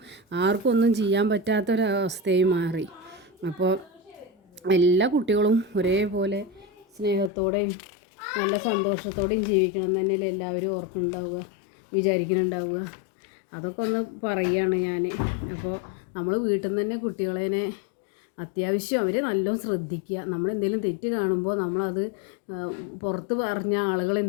ആർക്കും ഒന്നും ചെയ്യാൻ പറ്റാത്തൊരവസ്ഥയായി മാറി. അപ്പോൾ എല്ലാ കുട്ടികളും ഒരേപോലെ സ്നേഹത്തോടെയും നല്ല സന്തോഷത്തോടെയും ജീവിക്കണം എന്ന് തന്നെയല്ലേ എല്ലാവരും വിചാരിക്കുന്നുണ്ടാവുക. അതൊക്കെ ഒന്ന് പറയുകയാണ് ഞാൻ. അപ്പോൾ നമ്മൾ വീട്ടിൽ നിന്ന് തന്നെ കുട്ടികളെ അത്യാവശ്യം അവരെ നല്ലോണം ശ്രദ്ധിക്കുക. നമ്മളെന്തെങ്കിലും തെറ്റ് കാണുമ്പോൾ നമ്മളത് പുറത്ത് പറഞ്ഞ ആളുകൾ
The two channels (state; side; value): drops out; right; at 7.3 s